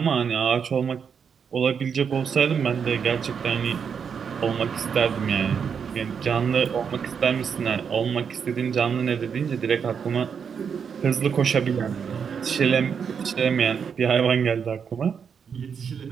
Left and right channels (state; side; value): quieter; left; 6.8 dB